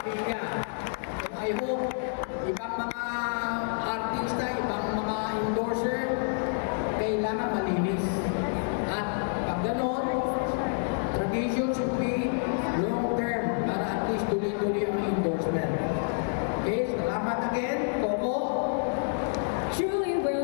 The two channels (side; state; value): right; silent; digital silence